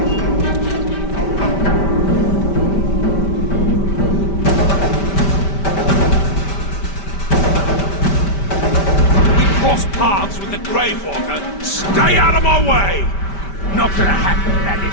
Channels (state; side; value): late; right; 5.1 ms